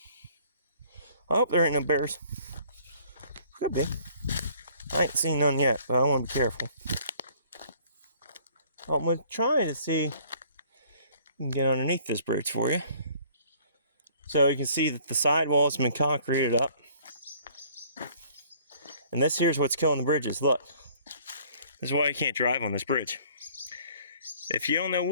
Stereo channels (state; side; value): inverted; both; correlation -0.56